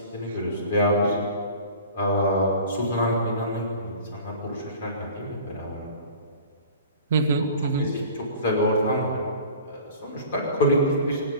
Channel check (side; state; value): both; inverted; correlation -0.43